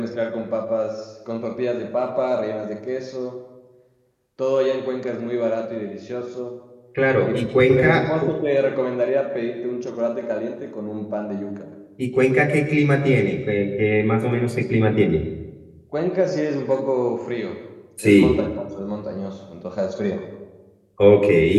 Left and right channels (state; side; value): identical; both; correlation 1.00